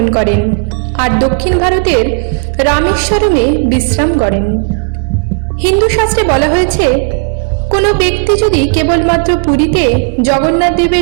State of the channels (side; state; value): left; quieter; 36.5 dB